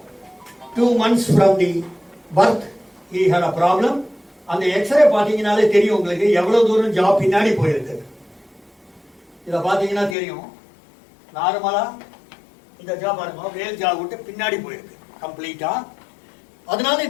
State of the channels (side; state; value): right; drops out; at 10.2 s